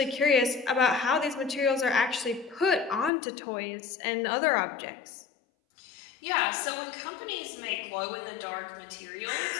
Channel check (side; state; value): right; drops out; at 3.1 s